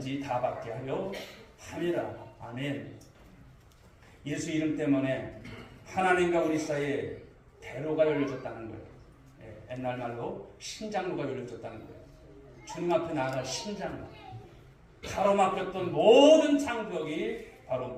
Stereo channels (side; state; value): both; identical; correlation 1.00